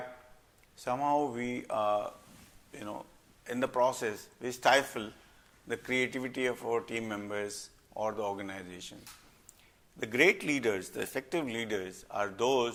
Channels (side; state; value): both; identical; correlation 1.00